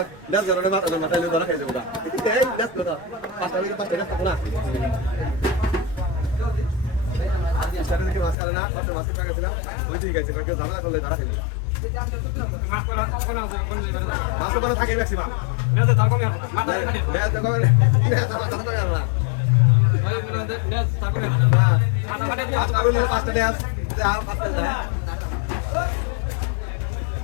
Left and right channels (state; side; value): drops out; right; at 8.3 s